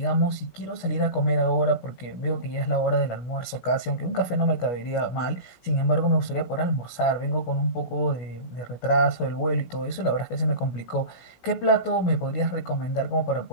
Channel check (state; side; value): late; right; 16 ms